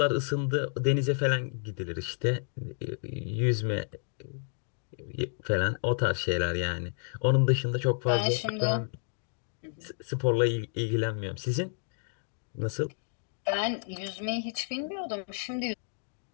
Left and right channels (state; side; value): silent; right; digital silence